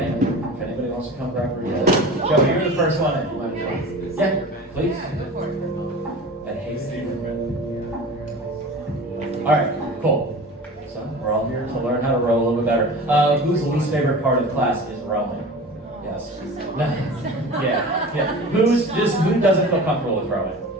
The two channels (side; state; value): both; normal; correlation 0.36